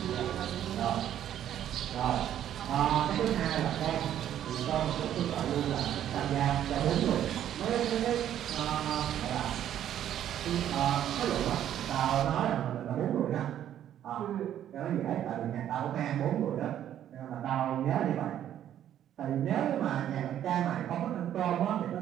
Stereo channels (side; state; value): left; quieter; 10.9 dB